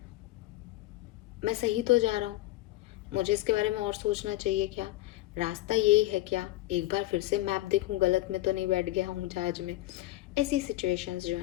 मैं सही तो जा रहा हूँ, मुझे इसके बारे में और सोचना चाहिए, क्या रास्ता यही है, क्या एक बार फिर से मैप देखूं, गलत में तो नहीं बैठ गया हूँ जहाज में। ऐसी सिचुएशंस जो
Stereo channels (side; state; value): right; quieter; 16.7 dB